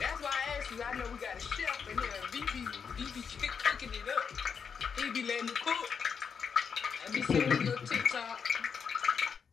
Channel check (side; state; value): right; quieter; 6.4 dB